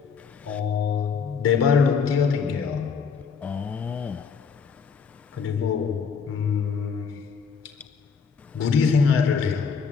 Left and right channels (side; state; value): right; quieter; 5.9 dB